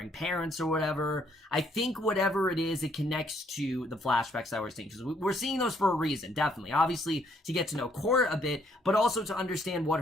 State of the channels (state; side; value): normal; both; correlation 0.68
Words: parents or whatever. I think whatever it is, it connects to the flashbacks that we're seeing, because we're seeing those for a reason, definitely. Obviously, to get to know Cora a bit, but also to understand what